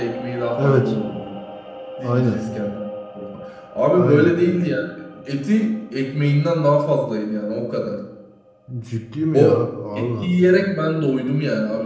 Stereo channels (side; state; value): both; identical; correlation 1.00